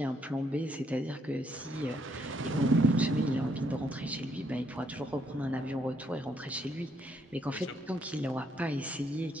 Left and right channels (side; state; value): both; normal; correlation 0.72